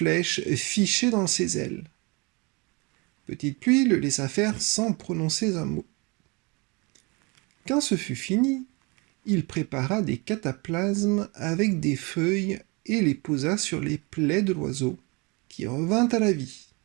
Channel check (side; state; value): left; quieter; 28.4 dB